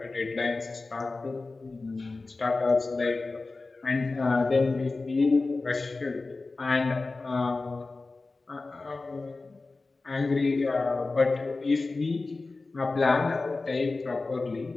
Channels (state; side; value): quieter; right; 3.6 dB